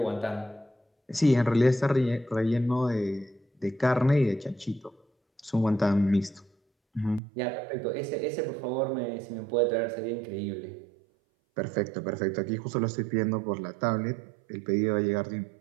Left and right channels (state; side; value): drops out; left; at 7.2 s